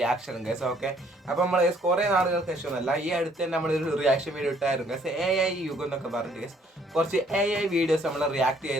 guys. Okay, അപ്പോൾ നമ്മൾ കുറേ നാളുകൾക്ക് ശേഷമൊന്നുമല്ല, ഈ അടുത്ത് തന്നെ നമ്മളൊരു റിയാക്ഷൻ വീഡിയോ ഇട്ടായിരുന്നു ഗൈസ്. AI യുഗം എന്നൊക്കെ പറഞ്ഞു ഗൈസ്. കുറച്ച് AI വീഡിയോസ് നമ്മൾ റിയാക്ട്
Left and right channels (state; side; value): normal; both; correlation 0.63